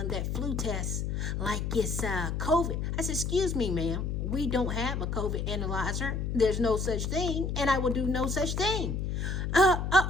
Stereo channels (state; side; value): noise; left; hum, 1 dB below the sound